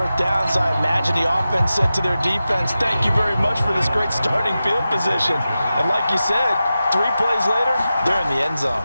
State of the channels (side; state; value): both; inverted; correlation -0.93